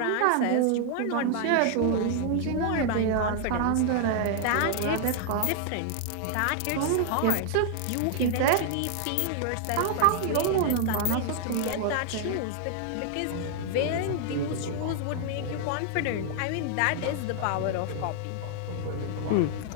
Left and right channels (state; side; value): different; both; correlation 0.00